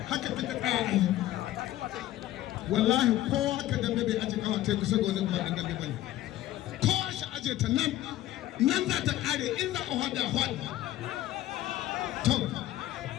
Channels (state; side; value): quieter; right; 14.4 dB